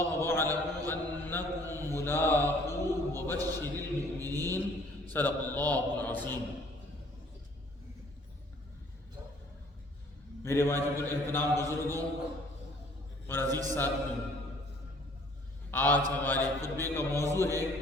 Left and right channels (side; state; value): both; normal; correlation 0.57